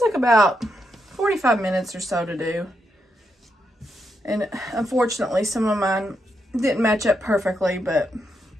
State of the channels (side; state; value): both; normal; correlation 0.82